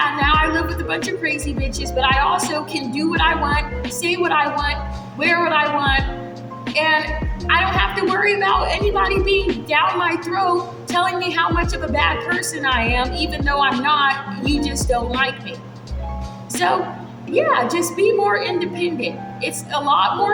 now I live with a bunch of crazy bitches, but I also can do what I want, say what I want, wear what I want, And I don't have to worry about anybody being down my throat telling me how much of a bad person I am, even though I'm not. You just don't like me. So yeah, just be more independent. It's a lot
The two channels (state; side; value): identical; both; correlation 1.00